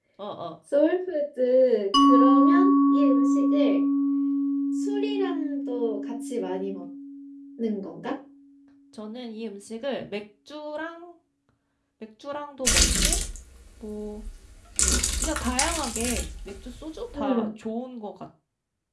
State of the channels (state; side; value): identical; both; correlation 1.00